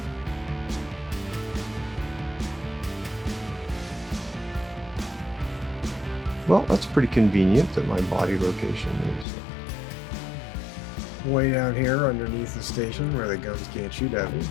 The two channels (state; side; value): drops out; right; at 9.2 s